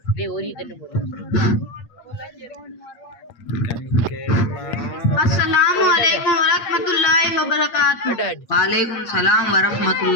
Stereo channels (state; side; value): late; right; 8.7 ms